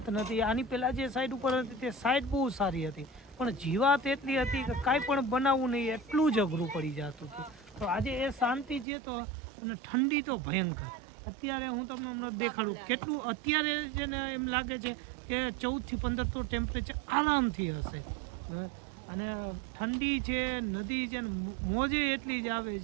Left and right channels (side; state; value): left; drops out; at 8.8 s